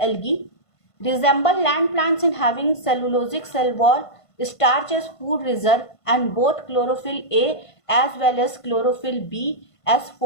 Resemble land plants in having cellulosic cell wall, starch as food reserve, and both chlorophyll A as well as chlorophyll B as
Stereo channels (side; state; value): right; late; 1.5 ms